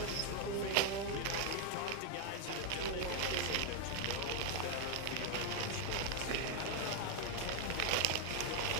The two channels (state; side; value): different; both; correlation 0.00